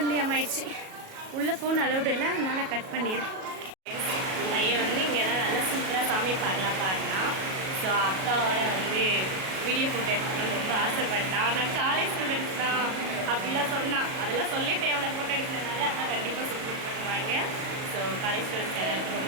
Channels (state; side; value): late; left; 37 ms